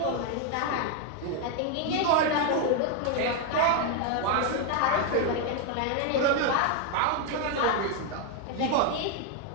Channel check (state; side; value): different; both; correlation 0.01